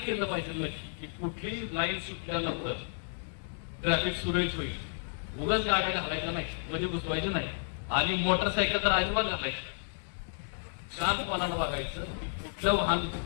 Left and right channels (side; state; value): right; silent; digital silence